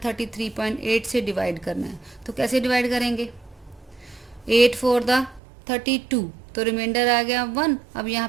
से डिवाइड करना है। तो कैसे डिवाइड करेंगे, 8 4 द 32, तो रिमाइंडर आ गया 1। अब यहाँ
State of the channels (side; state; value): left; drops out; at 5.4 s